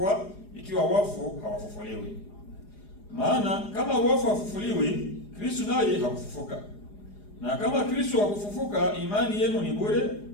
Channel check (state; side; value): late; right; 4.9 ms